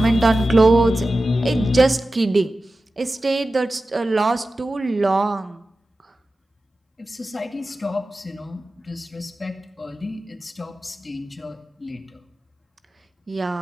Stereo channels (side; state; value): both; normal; correlation 0.94